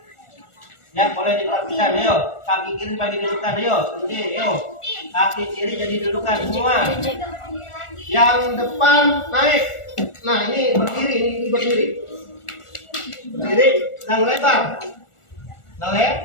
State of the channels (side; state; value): right; late; 1.4 ms